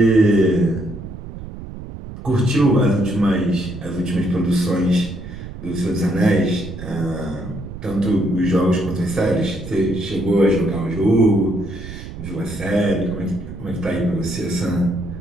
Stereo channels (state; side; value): noise; right; rumble, 11 dB below the sound